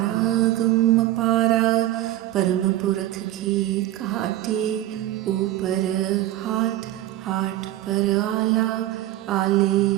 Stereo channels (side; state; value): left; quieter; 14.4 dB